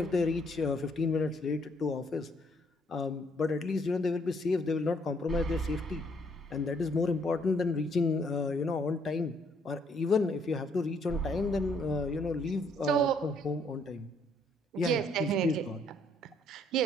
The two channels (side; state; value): both; normal; correlation 0.67